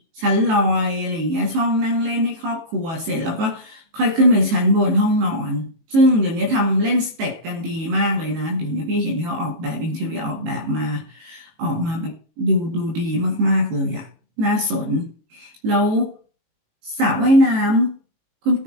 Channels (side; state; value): left; late; 18 ms